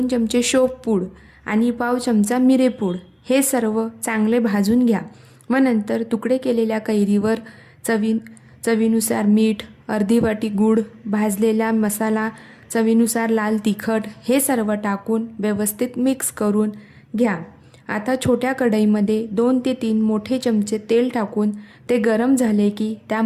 चमचे शोपपूड आणि पाव चमचा मिरेपूड हे सर्व चांगले भाजून घ्या व नंतर तुकडे केलेल्या कैरीवर चवीनुसार मीठ, अर्धी वाटी गूळ, भाजलेला मसाला, चवीनुसार लाल तिखट हे सर्व टाकून व्यवस्थित मिक्स करून घ्या। आता छोट्या कढईमध्ये 2 ते 3 मोठे चमचे तेल टाकून ते गरम झाले की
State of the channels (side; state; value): both; identical; correlation 1.00